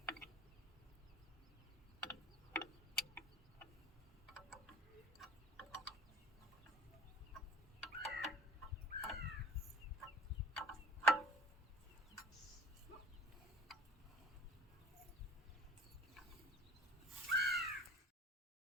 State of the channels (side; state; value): both; normal; correlation 0.44